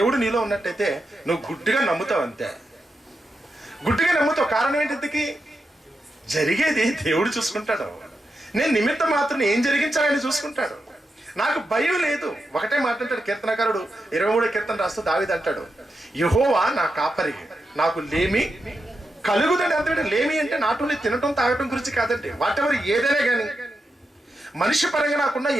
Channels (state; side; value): normal; both; correlation 0.87